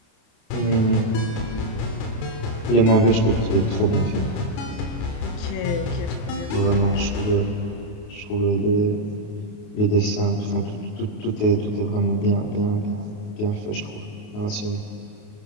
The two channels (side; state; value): right; late; 28 ms